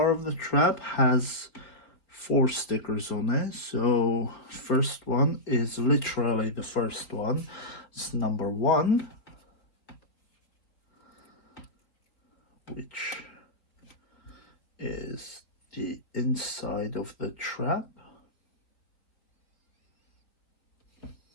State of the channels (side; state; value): right; late; 3.8 ms